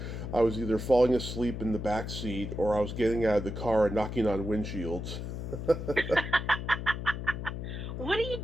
I was either falling asleep in the back seat or I was getting out of the car and knocking on windshields. What are you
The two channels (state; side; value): noise; left; hum, 6 dB below the sound